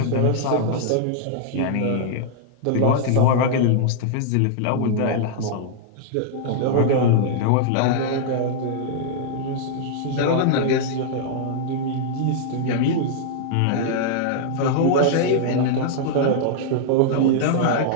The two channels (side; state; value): both; different; correlation -0.01